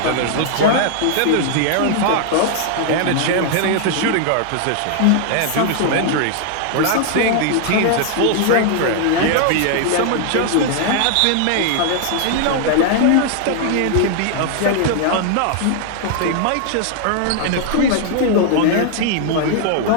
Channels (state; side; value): different; both; correlation 0.00